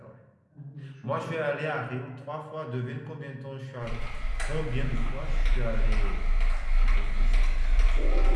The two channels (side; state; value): both; identical; correlation 1.00